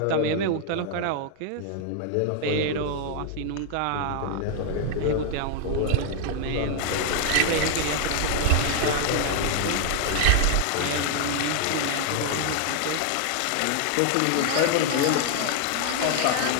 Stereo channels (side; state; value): both; different; correlation 0.00